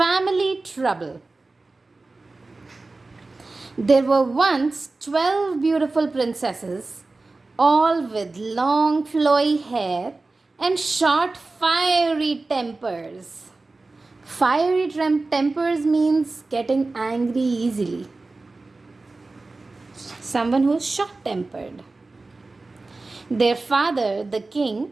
Trouble. There were once 12 beautiful princesses, all with long flowy hair and short fiery tempers. Fiery tempers means getting angry easily. Someone who is short tempered. Their father, the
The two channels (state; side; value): quieter; left; 3.4 dB